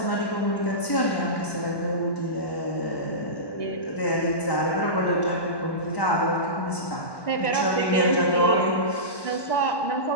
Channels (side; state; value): right; late; 1.1 ms